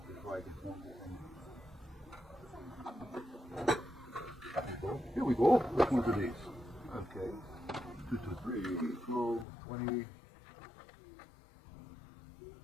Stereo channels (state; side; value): drops out; right; at 9.5 s